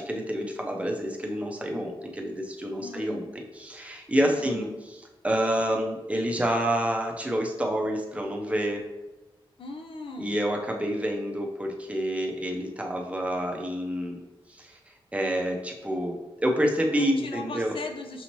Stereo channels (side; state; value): both; normal; correlation 0.84